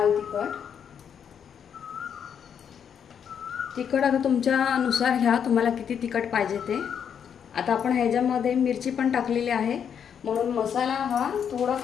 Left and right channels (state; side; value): quieter; right; 7.9 dB